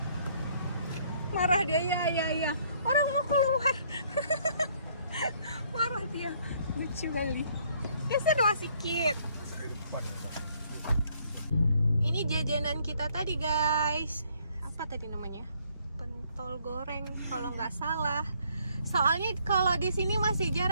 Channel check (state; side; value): inverted; both; correlation -0.66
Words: Marah dia, ya. Orang mau keluar. Marah dia. Lucu kali. Geser masih sedikit. Ini jajanan kita tadi guys. Apa tadi namanya? Pentol goreng kalau nggak salah. Soalnya kalau di sini masih